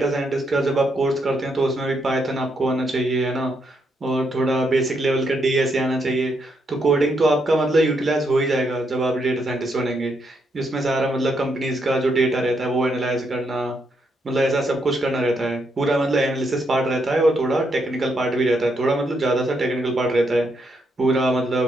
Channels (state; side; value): normal; both; correlation 0.78